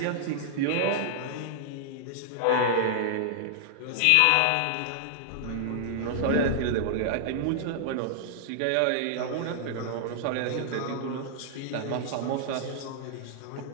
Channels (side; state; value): both; different; correlation -0.01